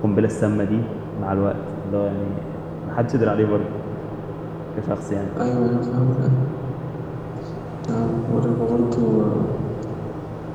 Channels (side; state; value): both; identical; correlation 1.00